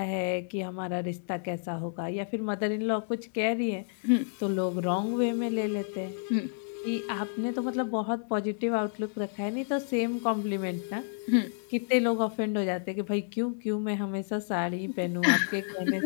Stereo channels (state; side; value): silent; right; 58 dB below the other